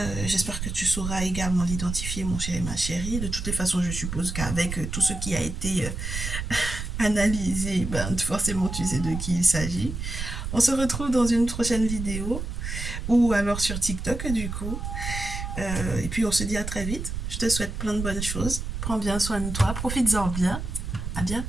J'espère que tu sauras également l'identifier, mon chéri, ma chérie. De toutes les façons, je suppose qu'avec tout ce qui a été analysé, ben, forcément, tu sais de qui il s'agit. On se retrouve dans une prochaine vidéo ou alors sur TikTok, du coup. Et puis, on se dit à très vite. Je te souhaite plein de bonnes choses. Prends bien soin de toi. Profites-en bien. À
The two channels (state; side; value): noise; right; rumble, 5 dB below the sound